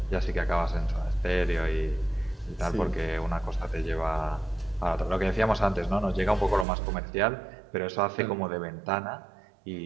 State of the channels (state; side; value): drops out; left; at 6.7 s